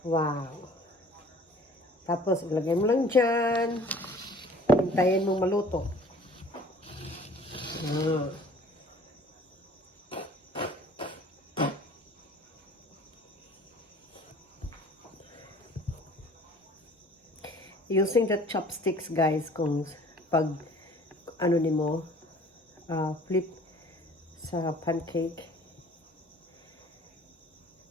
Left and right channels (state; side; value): normal; both; correlation 0.51